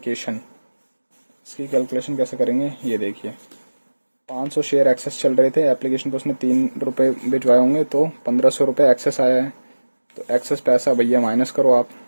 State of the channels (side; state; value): both; inverted; correlation -1.00